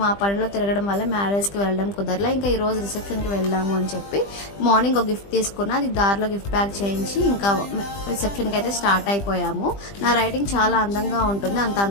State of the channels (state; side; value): late; right; 20 ms